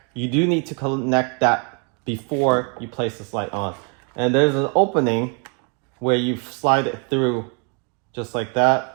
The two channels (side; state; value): left; quieter; 37.9 dB